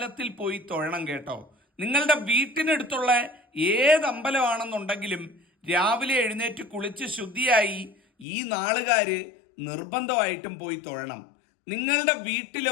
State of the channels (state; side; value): drops out; right; at 8.2 s